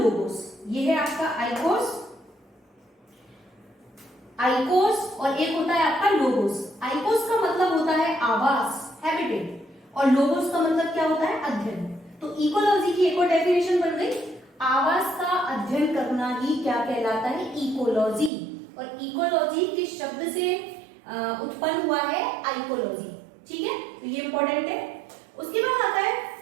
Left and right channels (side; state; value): left; drops out; at 18.3 s